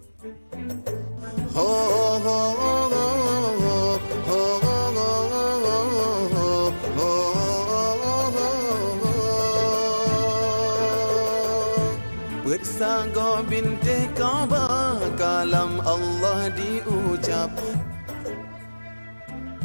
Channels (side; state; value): both; inverted; correlation -1.00